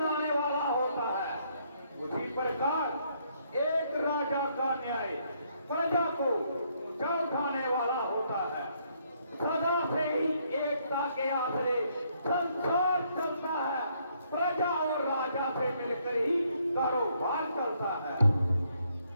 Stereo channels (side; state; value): both; inverted; correlation -0.71